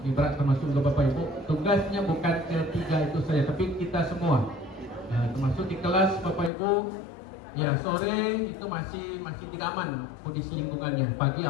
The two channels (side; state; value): right; drops out; at 6.5 s